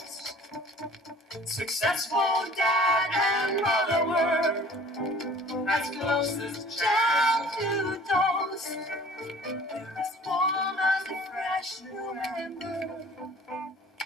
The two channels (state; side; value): normal; both; correlation 0.48